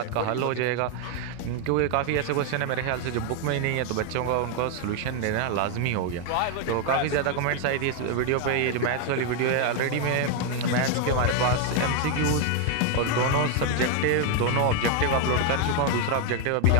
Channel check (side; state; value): both; different; correlation 0.01